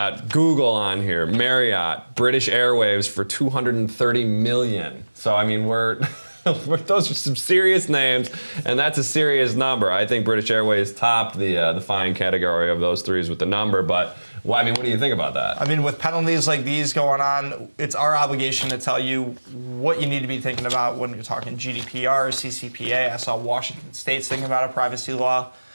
Google on here, Marriott, British Airways for $230 million. So I mean, those are some serious names, and that's a serious number. I think British Airways topped the fine category of those threes with the number, but well, I mean, what do you think about that? I mean, with penalties like these going on, it's our obligation to tell you what you need to be thinking about when you're talking GDPR, CCPA. I saw Washington State's thinking about a privacy law.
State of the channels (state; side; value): inverted; both; correlation -1.00